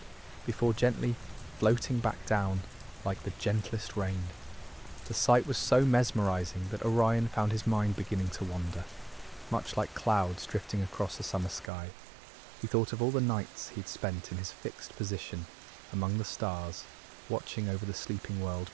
before gently floating back down like the gentlest rain. The sight was so mesmerizing that Orion found his mind beginning to wander, much like clouds drifting across a summer sky. He thought of all the nights he'd spent in his fixed position among the stars, watching over the sleeping world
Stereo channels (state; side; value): drops out; left; at 11.7 s